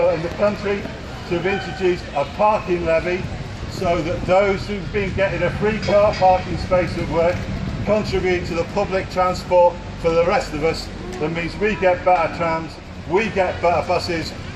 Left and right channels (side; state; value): both; identical; correlation 1.00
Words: in the country, to have introduced a parking levy so that those who've been getting a free car parking space at work contribute to the public transport for the rest of us. That means we get better trams, we get better buses,